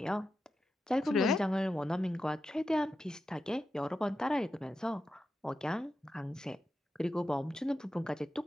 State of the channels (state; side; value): normal; both; correlation 0.90